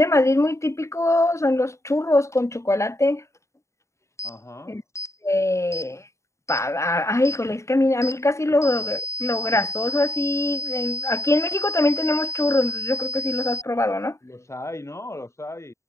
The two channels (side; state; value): right; late; 0.14 ms